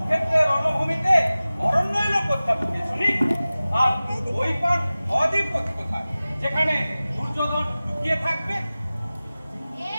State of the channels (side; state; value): both; inverted; correlation -0.97